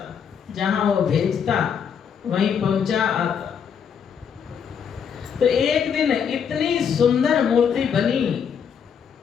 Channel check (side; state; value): right; quieter; 7.4 dB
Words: जहां वो भेजता वहीं पहुंचा आता। तो एक दिन इतनी सुंदर मूर्ति बनी